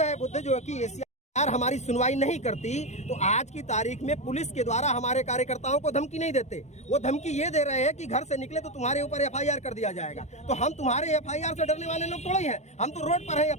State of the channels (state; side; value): late; right; 0.33 ms